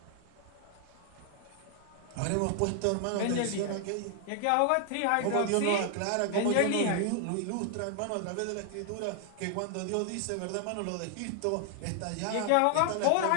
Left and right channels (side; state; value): both; different; correlation 0.00